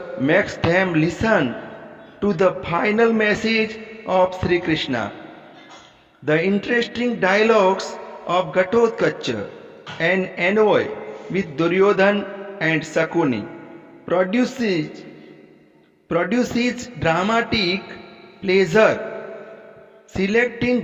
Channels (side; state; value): both; identical; correlation 1.00